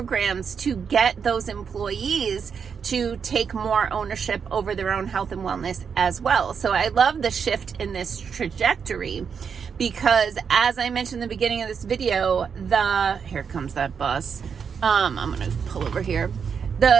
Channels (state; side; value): quieter; left; 6.6 dB